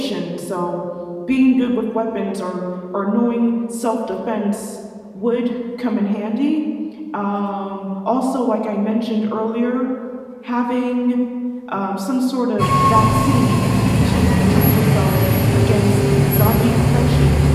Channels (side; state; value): both; identical; correlation 1.00